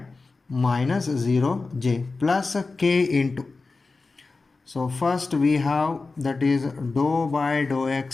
minus 0j plus k into, so first we have, that is dou by dou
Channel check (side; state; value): right; quieter; 3.9 dB